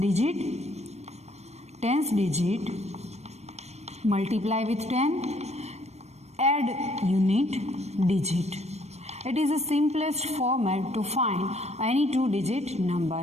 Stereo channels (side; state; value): left; late; 0.31 ms